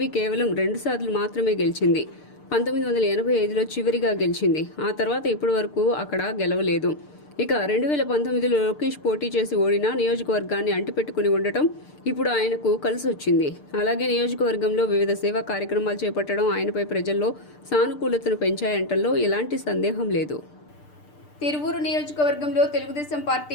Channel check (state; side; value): late; right; 6.7 ms